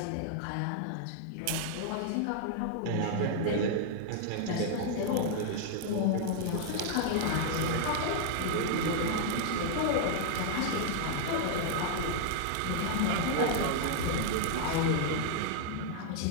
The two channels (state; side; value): different; both; correlation -0.01